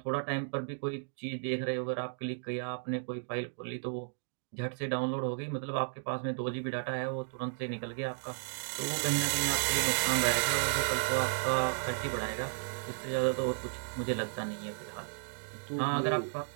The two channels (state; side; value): silent; left; digital silence